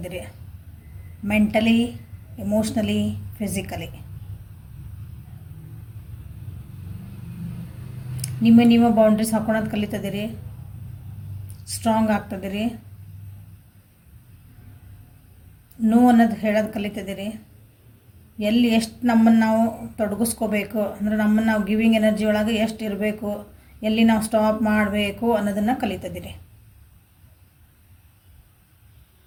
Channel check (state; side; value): identical; both; correlation 1.00